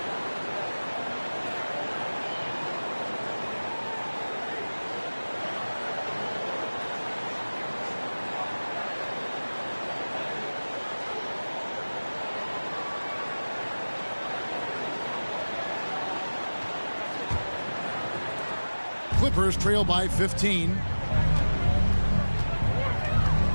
Clippers trail by 15.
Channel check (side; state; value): both; inverted; correlation -1.00